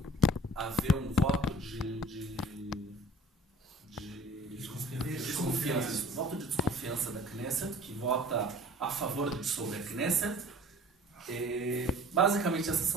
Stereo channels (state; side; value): normal; both; correlation 0.48